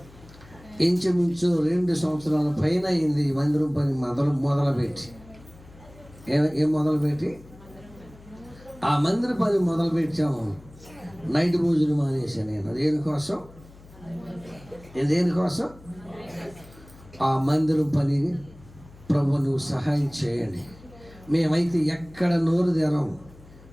ఇంచుమించు 2 సంవత్సరాల పైన అయింది మందిరం పని మొదలుపెట్టి. ఏం మొదలుపెట్టి? ఆ మందిర పని మొదలుపెట్టాము. నైట్ భోజనం మానేసాను నేను. దేనికోసం? దేనికోసం? ఆ మందిరం పని. ప్రభు, నువ్వు సహాయం చేయండి. మేమైతే ఎక్కడ నోరు తెరం,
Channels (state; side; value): noise; left; hum, 22 dB below the sound